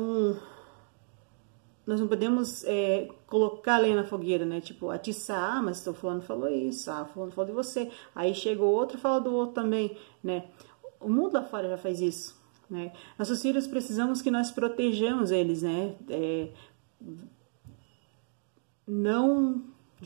nós não podemos colocar a lenha na fogueira, né? Tipo, atiçar, mas o fulano falou isso, fulano falou de você. Aí chega o outro e fala do outro também, né? O mundo lá fora já faz isso, né? Nossos filhos precisamos que nós protejamos eles, né? Não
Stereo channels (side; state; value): left; silent; digital silence